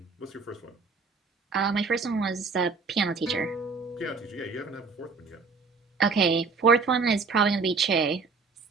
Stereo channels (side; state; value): left; quieter; 4.6 dB